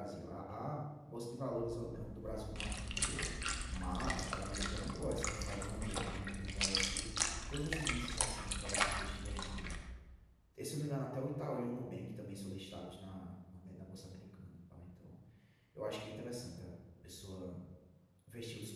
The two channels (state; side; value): identical; both; correlation 1.00